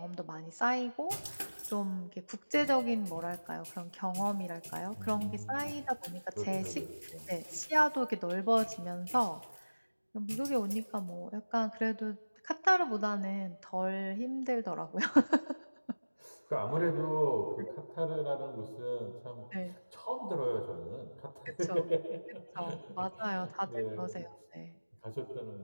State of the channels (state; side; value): inverted; both; correlation -1.00